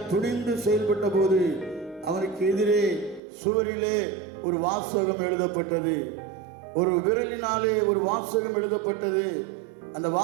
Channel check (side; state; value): left; drops out; at 3.2 s